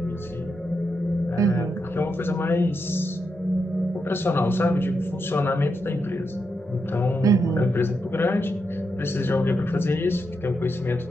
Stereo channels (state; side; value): normal; both; correlation 0.84